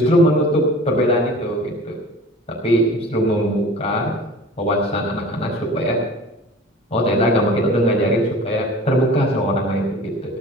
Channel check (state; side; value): normal; both; correlation 0.41